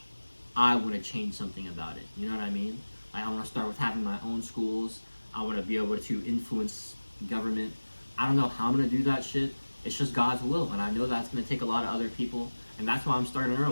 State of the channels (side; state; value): both; inverted; correlation -1.00